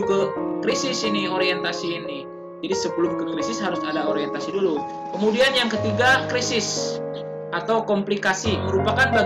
ke krisis ini, orientasi ini. Jadi sebelum ke krisis harus ada orientasi dulu. Kemudian yang ketiga, krisis atau komplikasi. Merupakan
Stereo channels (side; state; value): both; identical; correlation 1.00